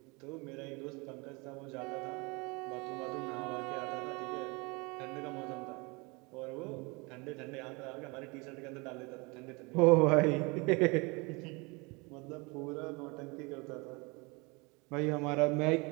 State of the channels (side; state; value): left; quieter; 27.6 dB